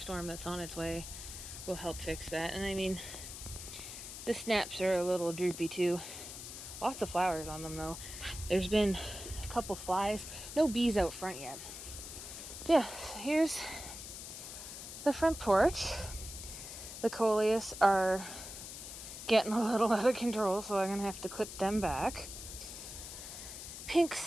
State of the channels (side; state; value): left; noise; hiss, 10 dB below the sound